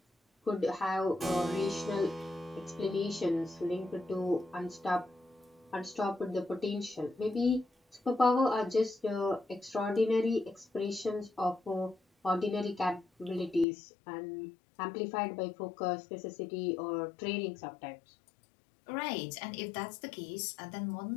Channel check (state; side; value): drops out; right; at 13.7 s